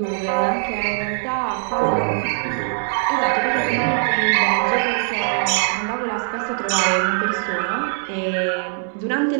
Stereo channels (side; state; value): left; silent; 57 dB below the other